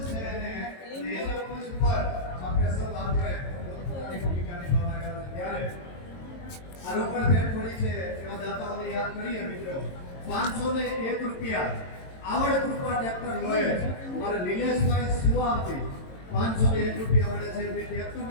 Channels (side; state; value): right; late; 22 ms